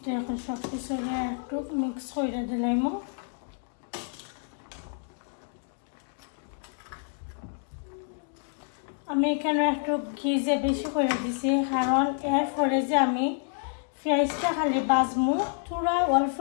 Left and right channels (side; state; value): right; silent; 59 dB below the other